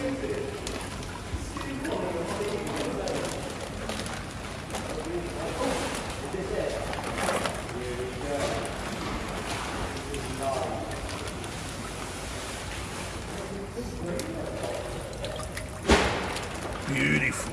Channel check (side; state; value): both; identical; correlation 1.00